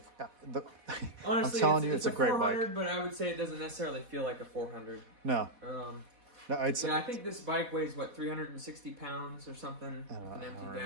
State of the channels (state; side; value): late; left; 4.1 ms